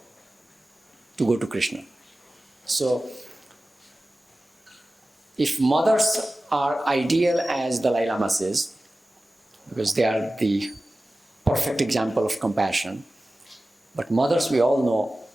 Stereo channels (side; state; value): both; normal; correlation 0.96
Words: to go to Krishna. So, if mothers are ideal as Dalai Lama says, because they are the perfect example of compassion, but mothers, we all know,